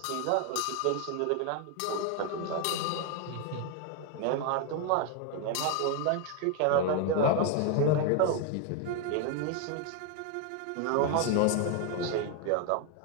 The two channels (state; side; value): different; both; correlation 0.01